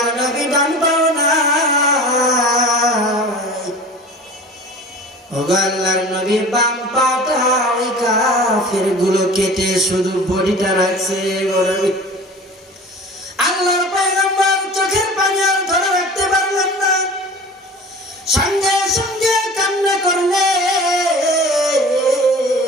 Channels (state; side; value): normal; both; correlation 0.40